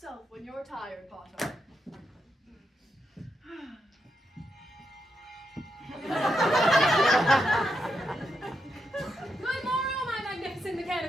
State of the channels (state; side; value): normal; both; correlation 0.83